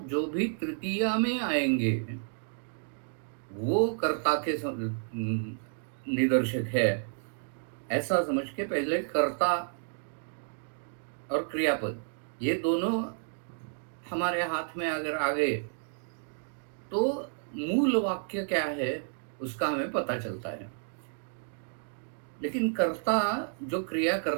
जो भी तृतीया में आएंगे वो कर्ता के निदर्शक है। ऐसा समझ के पहले कर्ता और क्रियापद ये दोनों हमारे हाथ में अगर आ गए तो मूल वाक्य क्या है उसका हमें पता चलता है। लेकिन कर्ता जो क्रिया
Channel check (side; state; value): left; silent; digital silence